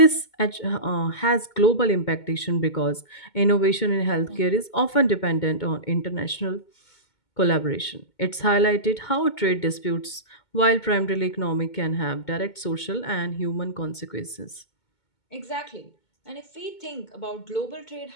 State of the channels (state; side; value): late; right; 2.2 ms